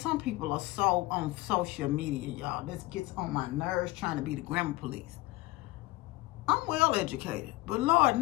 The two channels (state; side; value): quieter; right; 19.6 dB